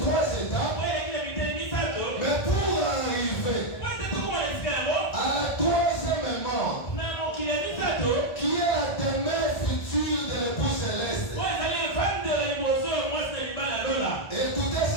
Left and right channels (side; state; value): right; late; 1.5 ms